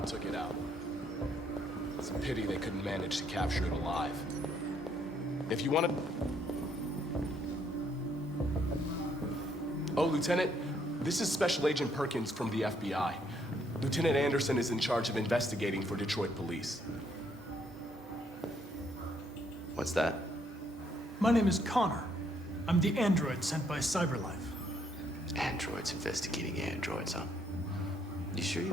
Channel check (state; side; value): normal; both; correlation 0.70